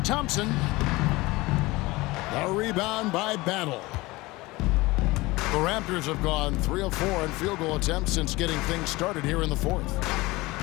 The rebound by Battle. The Raptors have gone 3 of 4 in field goal attempts since getting things started here in the fourth.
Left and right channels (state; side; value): quieter; right; 21.2 dB